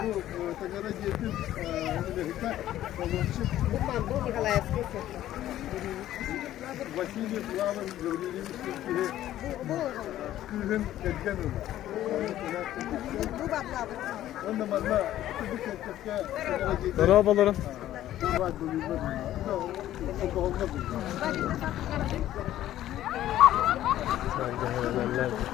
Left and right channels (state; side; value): quieter; right; 13.1 dB